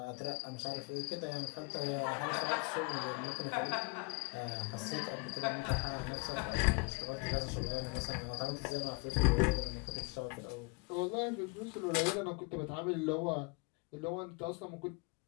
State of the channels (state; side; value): quieter; right; 31.1 dB